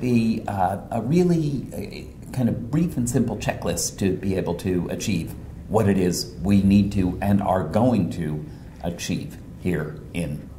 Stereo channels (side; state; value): both; identical; correlation 1.00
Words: a really kind of brief and simple checklist to be able to achieve what it is we need to and are going to achieve here in